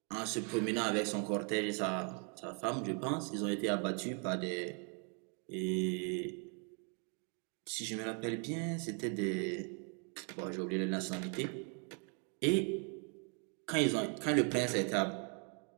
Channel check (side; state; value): left; quieter; 38.9 dB